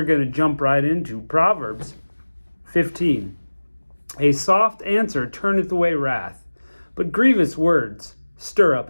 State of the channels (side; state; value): both; inverted; correlation -1.00